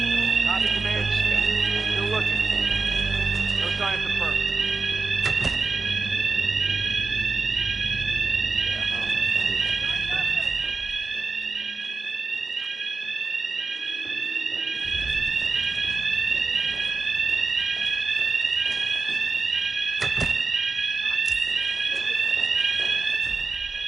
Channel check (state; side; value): quieter; left; 4.1 dB